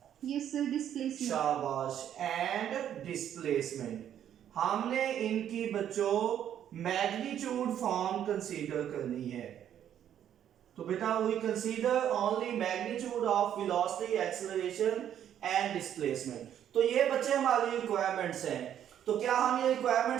yes sir, displacement। शाबाश, एंड डिस्प्लेसमेंट। हमने इनकी बच्चों मैग्नीट्यूड फॉर्म कंसीडर करनी है। तो बेटा we consider only magnitude of velocity, acceleration and displacement. तो ये बच्चे हमारी रिक्वायरमेंट्स हैं। तो क्या हम ये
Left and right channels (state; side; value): quieter; left; 10.1 dB